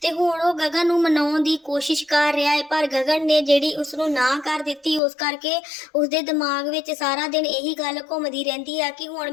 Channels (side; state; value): right; drops out; at 5.0 s